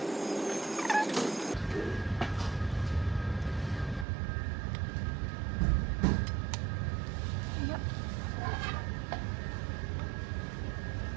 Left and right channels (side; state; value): left; drops out; at 4.0 s